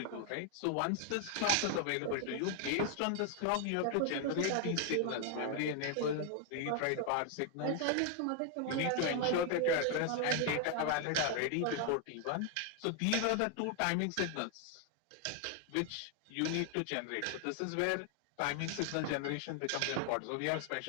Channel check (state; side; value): different; both; correlation 0.00